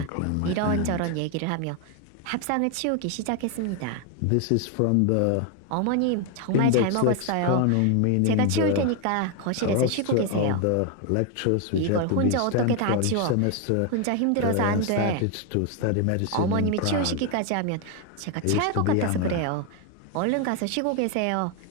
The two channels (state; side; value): different; both; correlation 0.01